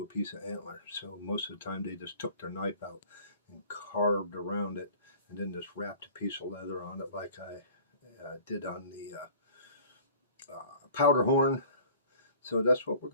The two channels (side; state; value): both; inverted; correlation -0.48